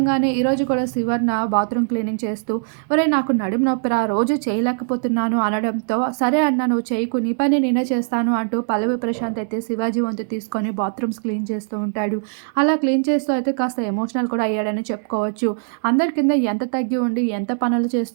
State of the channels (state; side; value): silent; left; digital silence